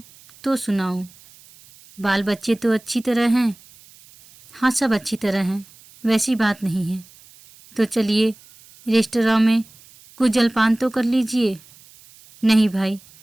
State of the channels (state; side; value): noise; right; hiss, 25 dB below the sound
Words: तो सुनाऊं। बाल बच्चे तो अच्छी तरह हैं? हाँ, सब अच्छी तरह हैं, वैसी बात नहीं है। तो चलिए रेस्तरां में कुछ जलपान तो कर लीजिए। नहीं भाई,